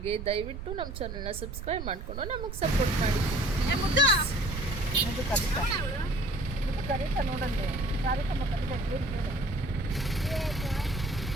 ದಯವಿಟ್ಟು ನಮ್ಮ ಚಾನಲ್ನ ಸಬ್ಸ್ಕ್ರೈಬ್ ಮಾಡಿಕೊಂಡು ನಮಗೆ ಸಪೋರ್ಟ್ ಮಾಡಿ. ಕರೀತಾ ನೋಡಂತೆ ಕಾರ್ಯಕ್ರಮ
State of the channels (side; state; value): right; noise; rumble, 8 dB below the sound